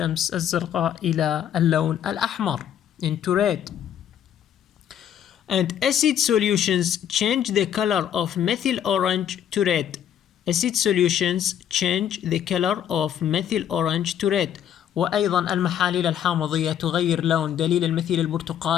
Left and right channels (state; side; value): quieter; right; 9.7 dB